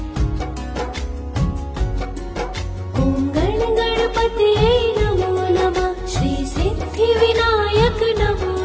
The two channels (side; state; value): both; identical; correlation 1.00